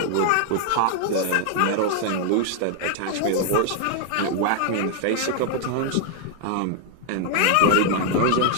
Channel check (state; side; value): different; both; correlation 0.00